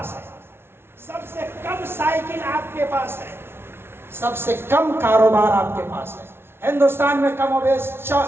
ہے, سب سے کم سائیکل آپ کے پاس ہے, سب سے کم کاروبار آپ کے پاس ہے. ہندوستان میں کم و بیش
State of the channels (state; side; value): late; left; 0.12 ms